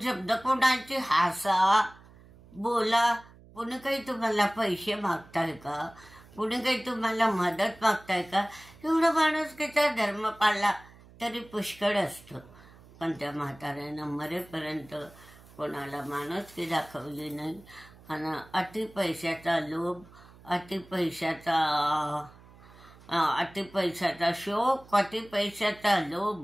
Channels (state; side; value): noise; right; hum, 23 dB below the sound